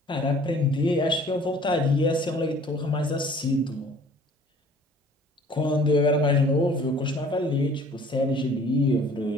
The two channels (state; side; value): normal; both; correlation 0.52